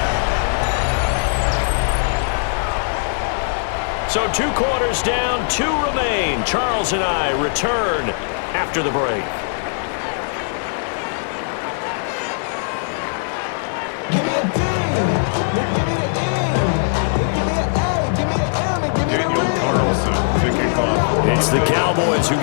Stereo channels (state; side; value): silent; right; 66 dB below the other